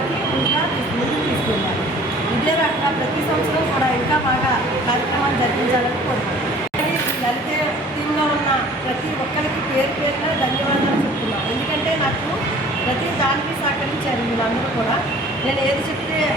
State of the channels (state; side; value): normal; both; correlation 0.50